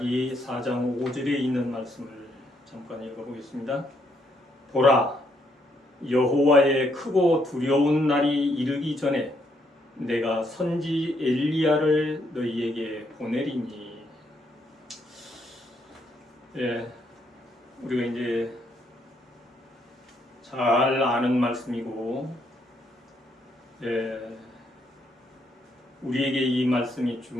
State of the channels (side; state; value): both; normal; correlation 0.74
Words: 4장 5절에 있는 말씀을 잠깐 읽어보겠습니다. 보라, 여호와의 크고 두려운 날이 이르기 전에 내가 선지 엘리야를 너희에게 보내리니. 우리가 이제 잘 아는 말씀이고, 우리에게 이 말씀이